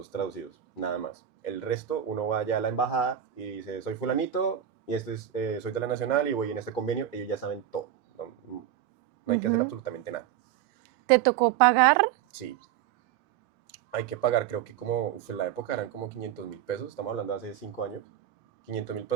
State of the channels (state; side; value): quieter; left; 10.6 dB